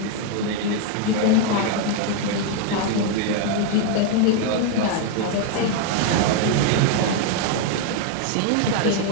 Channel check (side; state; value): both; different; correlation 0.01